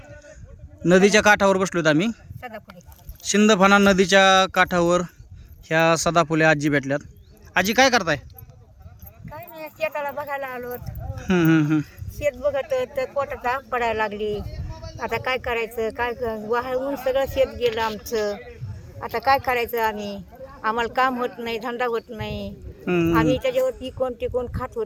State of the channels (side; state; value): both; identical; correlation 1.00